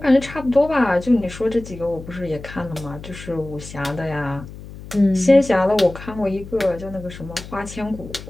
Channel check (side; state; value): left; noise; hum, 14 dB below the sound